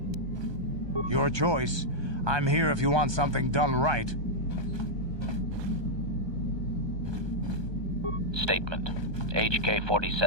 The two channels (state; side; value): late; left; 1.2 ms